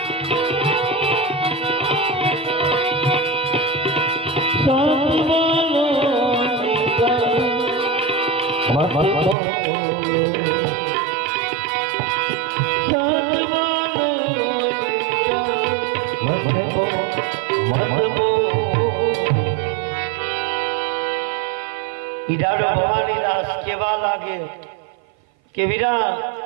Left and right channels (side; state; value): left; drops out; at 9.3 s